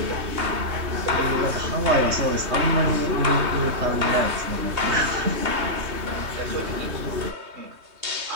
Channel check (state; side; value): late; left; 3.2 ms